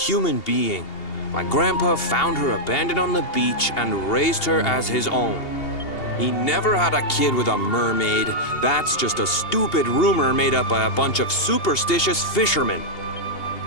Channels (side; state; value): right; late; 2.8 ms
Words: being. My grandpa found her abandoned on the beach and raised her as his own. He never had a kid with a mermaid. That's just a stupid rumor made up by a bunch of superstitious fishermen.